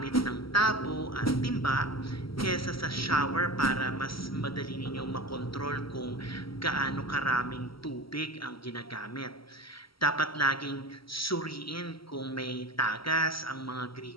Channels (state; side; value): late; right; 0.75 ms